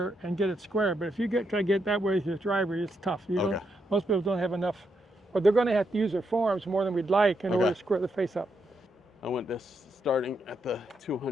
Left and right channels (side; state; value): both; normal; correlation 0.81